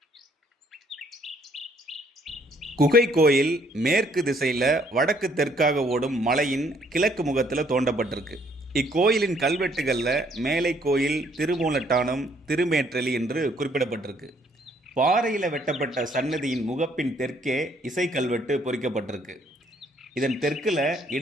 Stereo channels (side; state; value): both; normal; correlation 0.65